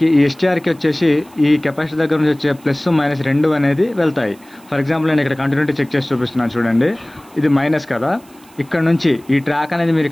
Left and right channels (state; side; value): noise; right; hiss, 27 dB below the sound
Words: ఈ ఎస్టీఆర్కి వచ్చేసి ఈ కెపాసిటీ దగ్గర నుంచి వచ్చే ప్లస్ మైనస్ 2 అనేది వెళ్తాయి. ఫర్ ఎగ్జాంపుల్ నేను ఇక్కడ కంటిన్యూటీ చెక్ చేసి చూపిస్తున్నాను చూడండి, ఇది మైనస్ కదా. ఇక్కడ నుంచి ఈ ట్రాక్ అనేది మీరు